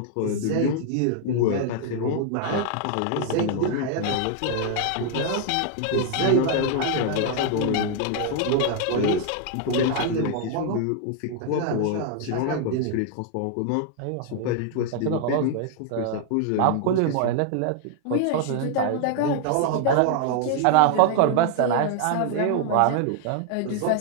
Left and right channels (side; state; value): both; different; correlation 0.00